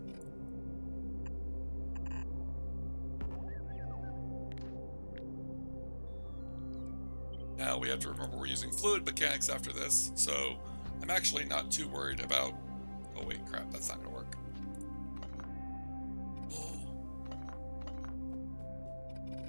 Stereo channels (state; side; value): inverted; both; correlation -1.00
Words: Now we have to remember we're using fluid mechanics after this, so I'm actually not too worried about... Oh wait, crap, that's not going to work.